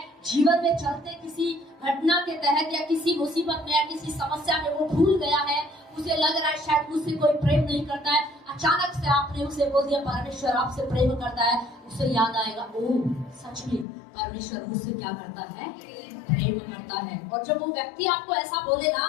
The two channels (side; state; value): right; drops out; at 13.9 s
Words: जीवन में चलते किसी घटना के तहत या किसी मुसीबत में या किसी समस्या में वो भूल गया है, उसे लग रहा है शायद मुझसे कोई प्रेम नहीं करता है। अचानक से आपने उसे बोल दिया परमेश्वर आपसे प्रेम करता है, उसे याद आएगा ओह सच में परमेश्वर मुझसे क्या करता है, प्रेम करता है। और जब वो व्यक्ति आपको ऐसा बोलेगा,